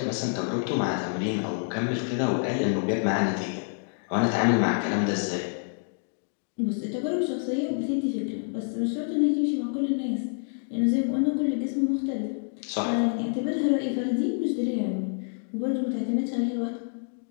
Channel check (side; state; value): right; silent; 59 dB below the other